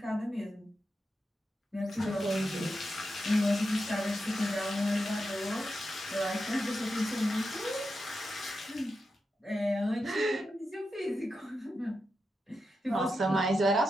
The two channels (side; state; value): both; normal; correlation 0.88